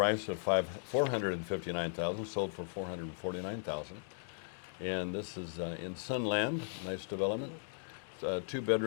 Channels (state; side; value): silent; right; digital silence